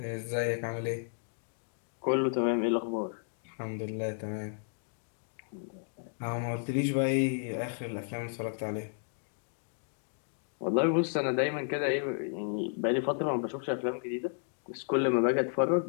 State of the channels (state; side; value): silent; right; digital silence